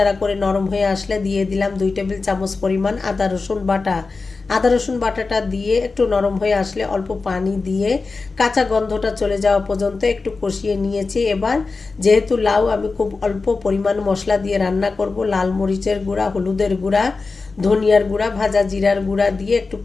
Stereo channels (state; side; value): quieter; right; 4.1 dB